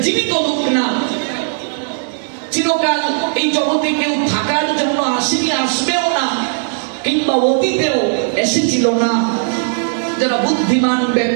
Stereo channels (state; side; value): silent; left; digital silence